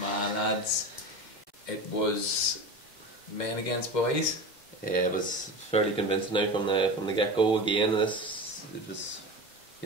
lads. It was men against boys. Yeah, it was fairly convincing now from the get go again. It was,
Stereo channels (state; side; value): normal; both; correlation 0.28